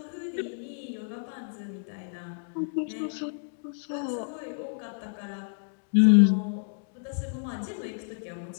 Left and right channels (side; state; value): right; silent; digital silence